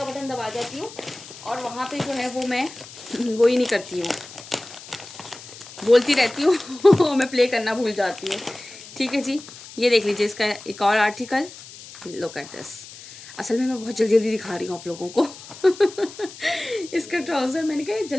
बटन दबा जाती हूँ, और वहाँ पे जो है वो मैं वो ही नहीं करती हूँ, बोलती रहती हूँ मैं प्ले करना भूल जाती हूँ। ठीक है जी, ये देख लीजिए इसका एक और आर्टिकल, लुक एट दिस। असल में मैं बहुत जल्दी जल्दी दिखा रही हूँ आप लोगों को इसका ट्राउज़र, मैंने कहा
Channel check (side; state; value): left; noise; hiss, 16 dB below the sound